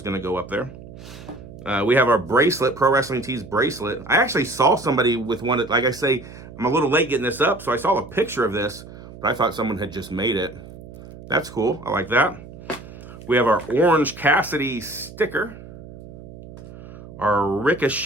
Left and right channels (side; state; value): right; noise; hum, 16 dB below the sound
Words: going to go up there. We have our bracelet, Pro Wrestling Tees bracelet. I actually saw somebody with one. Like I say, I'm a little late getting this up, so I saw a picture of this, but I thought someone had just made it. That's cool. I like that. We have our Orange Cassidy sticker, our